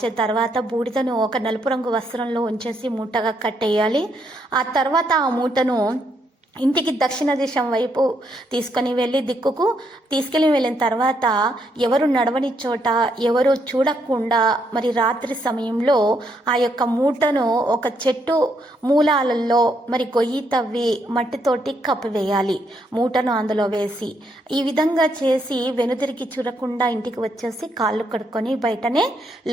తర్వాత బూడిదను ఒక నలుపు రంగు వస్త్రంలో ఉంచేసి మూటగా కట్టేయాలి. ఆ తర్వాత ఆ మూటను ఇంటికి దక్షిణ దిశం వైపు తీసుకొని తీసుకెళ్ళి వెళ్ళిన తర్వాత ఎవరు నడవని చోట, ఎవరు చూడకుండా మరి రాత్రి సమయంలో ఆ యొక్క మూటను ఒక చెట్టు మూలాలలో మరి గొయ్యి తవ్వి మట్టితోటి కప్పివేయాలి. మూటను అందులో వేసి ఈ విధంగా చేసి వెనుదిరిగి చూడకుండా ఇంటికి వచ్చేసి కాళ్ళు కడుక్కొని బయటనే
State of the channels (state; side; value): normal; both; correlation 0.75